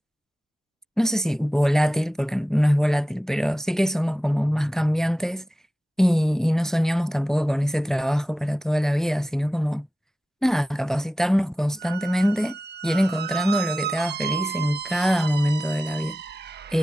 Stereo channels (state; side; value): normal; both; correlation 0.94